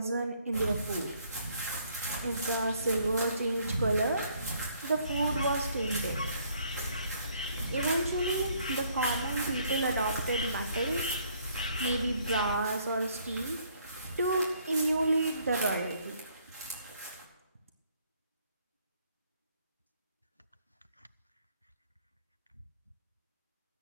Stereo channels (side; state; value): both; inverted; correlation -0.65